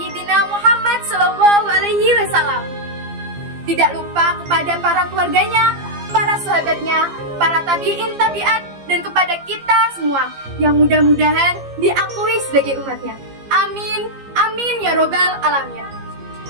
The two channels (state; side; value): late; left; 15 ms